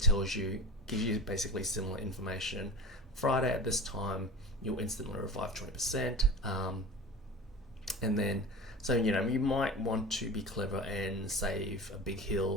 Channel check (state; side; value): normal; both; correlation 0.35